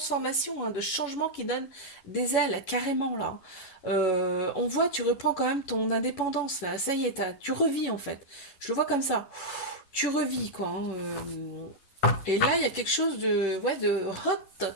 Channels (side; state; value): right; late; 11 ms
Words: hein, de changement qui donne des ailes, carrément là. On voit, tu reprends quand même ton indépendance là. Ça y est, tu revis en fait. Je le vois comme ça. Tu revis quoi, hein. Et là, il y a quelque chose ouais, de hot